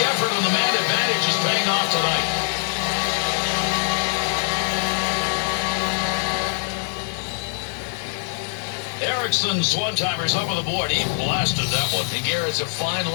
effort on the man advantage is paying off tonight. Eriksson's one-timer's up on the board. He blasted that one. And Garrett, it's a fine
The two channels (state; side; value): silent; right; 63 dB below the other